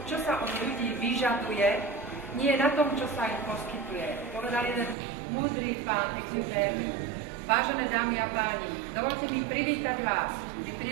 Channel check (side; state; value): left; drops out; at 5.0 s